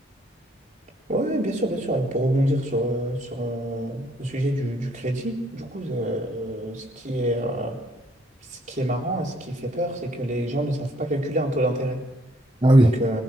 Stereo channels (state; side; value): normal; both; correlation 0.68